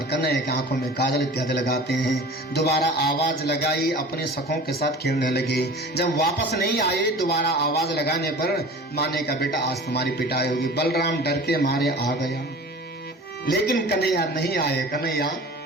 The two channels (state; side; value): normal; both; correlation 0.40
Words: कन्हैया की आंखों में काजल इत्यादि लगाते हैं। दोबारा आवाज लगाई, अपने सखों के साथ खेलने लगे। जब वापस नहीं आए, दोबारा आवाज लगाने पर माँ ने कहा बेटा आज तुम्हारी पिटाई होगी। बलराम डर के मारे आ गया, लेकिन कन्हैया नहीं आए। कन्हैया